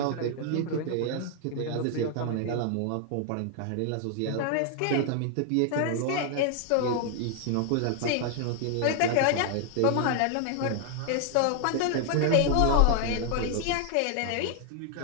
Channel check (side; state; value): both; different; correlation 0.00